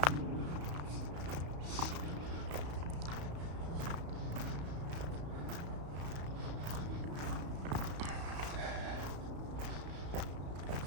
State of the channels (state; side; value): late; left; 34 ms